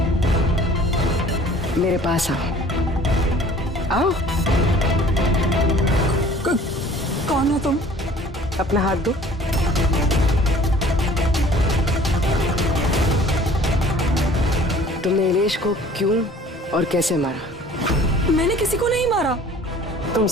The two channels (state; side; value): normal; both; correlation 0.50